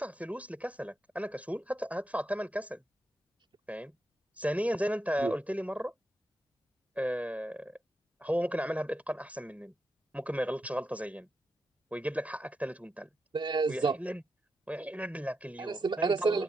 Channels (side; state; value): both; normal; correlation 0.85